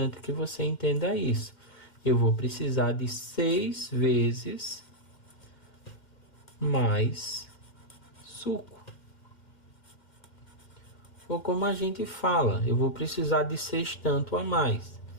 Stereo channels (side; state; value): right; late; 2.1 ms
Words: que você entenda isso. Eu vou precisar de 6 vezes mais suco. Ou como a gente fala, eu vou precisar de 6 tanto a mais.